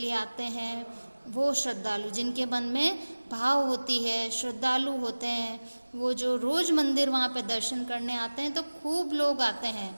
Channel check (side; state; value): both; inverted; correlation -1.00